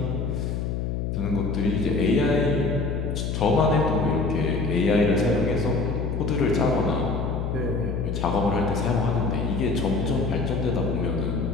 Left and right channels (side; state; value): left; noise; hum, 2 dB below the sound